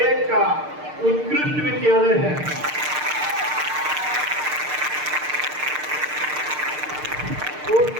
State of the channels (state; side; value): late; left; 6.6 ms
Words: का उत्कृष्ट विद्यालय है। और